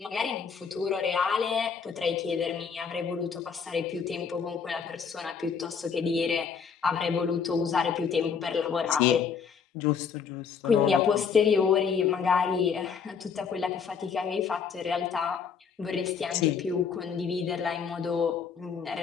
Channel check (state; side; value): quieter; right; 6.4 dB